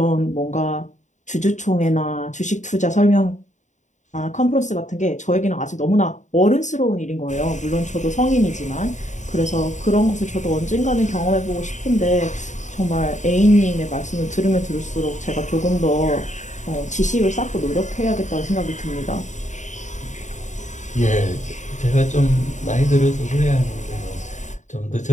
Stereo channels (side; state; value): right; late; 0.35 ms